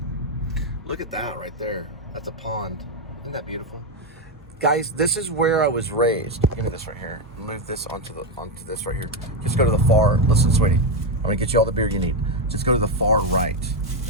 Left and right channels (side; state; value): both; normal; correlation 0.07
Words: Look at that right there. That's a pond. Isn't that beautiful? Guys, this is where I was raised. Give me this right here. Move this onto this right here. Just go to the far. Listen, sweetie. I'm going to get you all the beer you need. Just go to the far right.